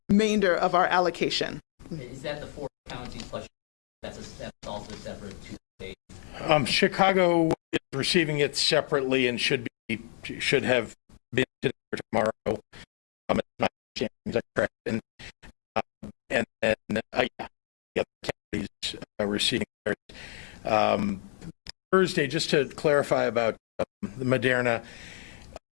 remainder of our allocation. Is that the 4 counties plus? That's also separate to state. Chicago is receiving it separately and should have been today or tomorrow. It's my understanding, is that correct? And then the other counties are receiving theirs. Thursday, just to clarify about the Moderna,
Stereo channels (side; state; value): right; silent; digital silence